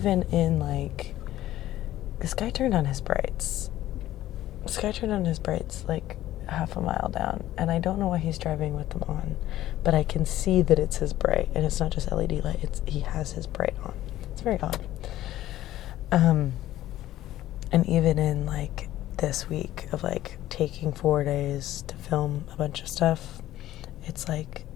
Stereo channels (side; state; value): right; quieter; 14.2 dB